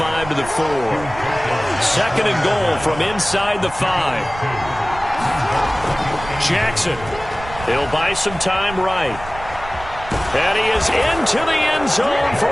to the 4. 2nd and goal from inside the 5. Jackson. He'll buy some time right. And he is into the end zone for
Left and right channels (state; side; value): noise; right; rumble, 14 dB below the sound